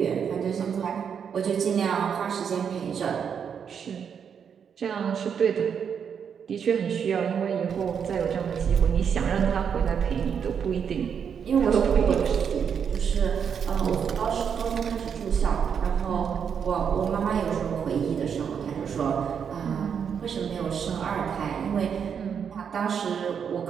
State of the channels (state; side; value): quieter; left; 7.3 dB